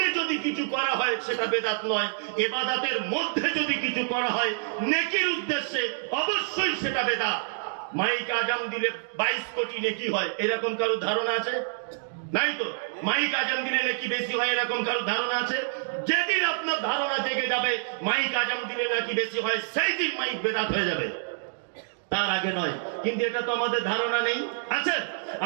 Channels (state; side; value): silent; left; digital silence